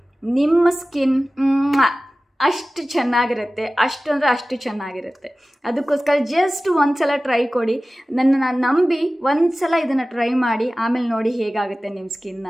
ನಿಮ್ಮ ಸ್ಕಿನ್ ಅಷ್ಟು ಚೆನ್ನಾಗಿರುತ್ತೆ, ಅಷ್ಟು ಚೆನ್ನಾಗಿರುತ್ತೆ. ಅದಕ್ಕೋಸ್ಕರ ಜಸ್ಟ್ ಒಂದು ಸಲ ಟ್ರೈ ಕೊಡಿ, ನನ್ನನ್ನು ನಂಬಿ ಒಂದು ಸಲ ಇದನ್ನು ಟ್ರೈ ಮಾಡಿ, ಆಮೇಲೆ ನೋಡಿ ಹೇಗಾಗುತ್ತೆ ನಿಮ್ಮ ಸ್ಕಿನ್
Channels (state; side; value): normal; both; correlation 0.96